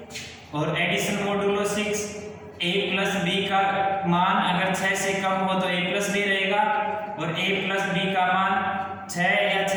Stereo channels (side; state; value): both; identical; correlation 1.00